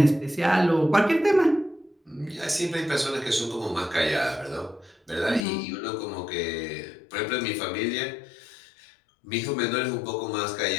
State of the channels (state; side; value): drops out; right; at 5.5 s